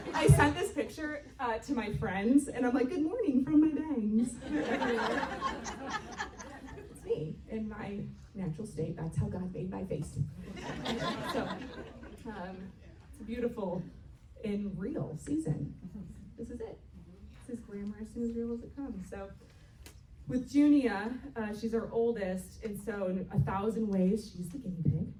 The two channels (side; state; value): both; identical; correlation 1.00